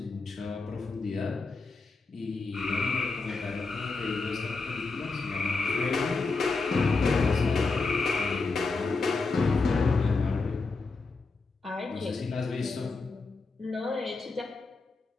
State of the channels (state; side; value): quieter; right; 4.0 dB